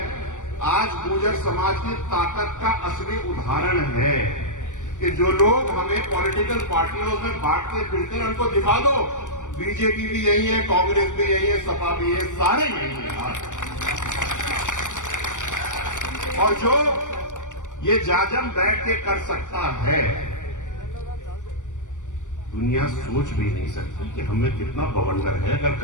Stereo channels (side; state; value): right; late; 0.86 ms